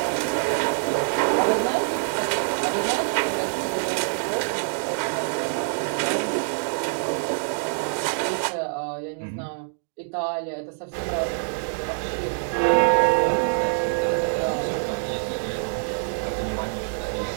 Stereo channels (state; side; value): silent; left; digital silence